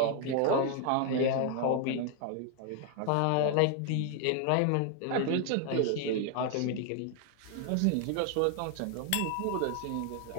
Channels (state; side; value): different; both; correlation 0.00